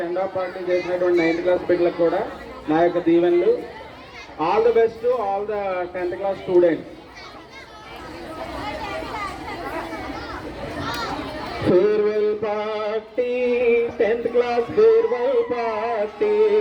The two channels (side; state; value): both; identical; correlation 1.00